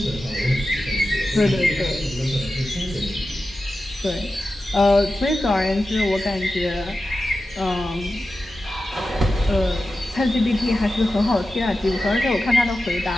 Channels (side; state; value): both; normal; correlation 0.92